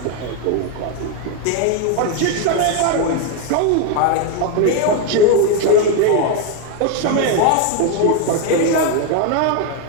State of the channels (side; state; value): both; different; correlation 0.01